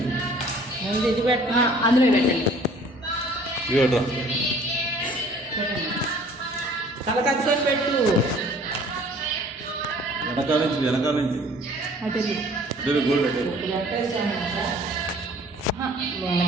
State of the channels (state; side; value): normal; both; correlation 0.53